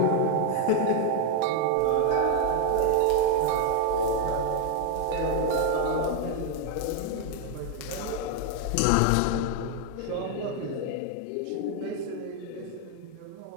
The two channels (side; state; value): both; different; correlation 0.01